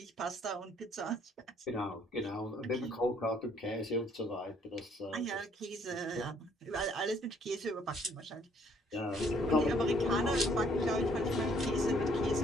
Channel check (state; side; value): normal; both; correlation 0.64